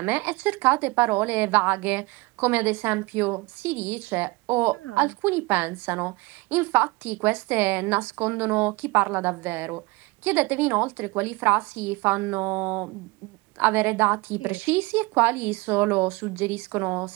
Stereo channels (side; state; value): left; quieter; 23.6 dB